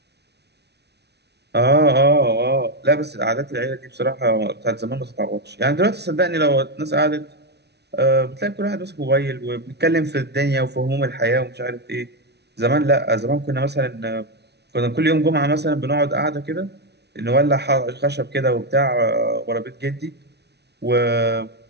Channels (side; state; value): left; late; 0.49 ms